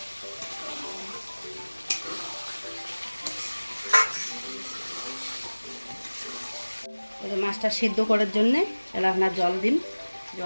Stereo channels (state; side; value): inverted; both; correlation -1.00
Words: মাছটা সিদ্ধ করার জন্যে এলা আপনার জল দিন,